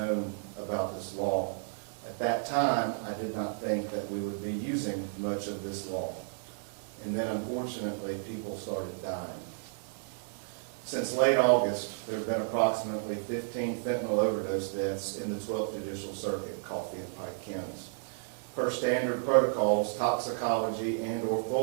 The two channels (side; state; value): left; silent; 56 dB below the other